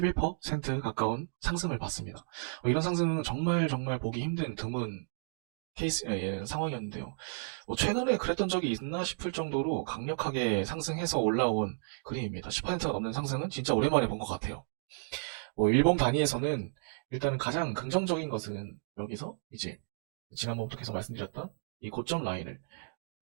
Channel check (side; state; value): left; silent; digital silence